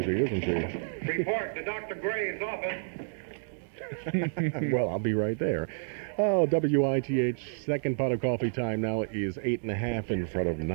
isn't she? Report to Dr. Gray's office. Well, I'll be right there. Oh, WITH, second pot of coffee time now is 8:30 in front of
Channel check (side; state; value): left; silent; digital silence